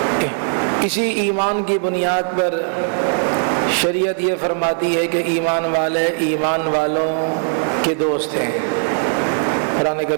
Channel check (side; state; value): left; silent; digital silence